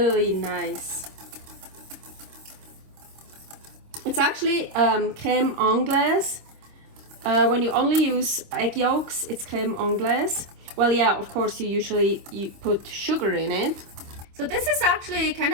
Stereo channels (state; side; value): late; left; 26 ms